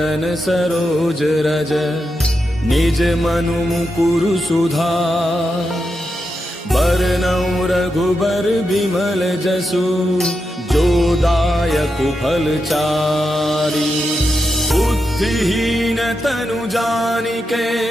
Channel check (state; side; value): normal; both; correlation 0.87